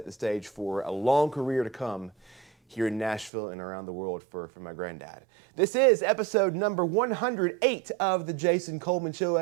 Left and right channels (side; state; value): left; drops out; at 3.3 s